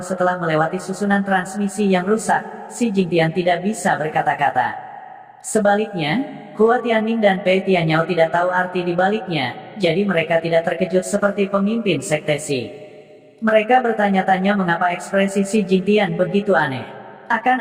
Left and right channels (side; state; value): both; identical; correlation 1.00